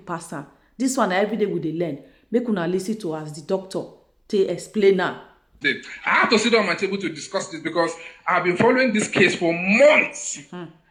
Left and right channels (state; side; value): identical; both; correlation 1.00